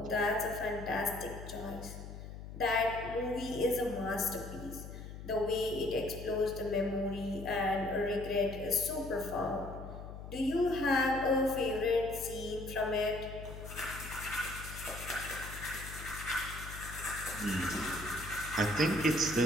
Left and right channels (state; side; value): noise; left; hum, 11 dB below the sound